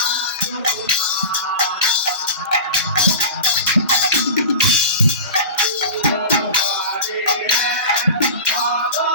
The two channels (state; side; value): inverted; both; correlation -0.30